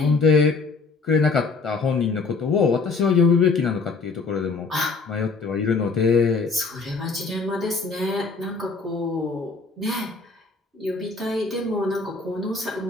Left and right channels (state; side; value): quieter; right; 4.3 dB